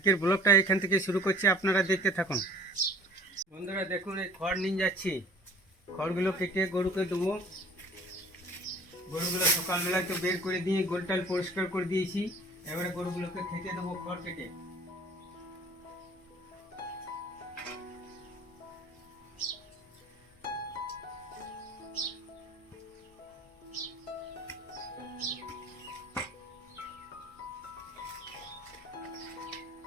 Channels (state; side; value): normal; both; correlation 0.48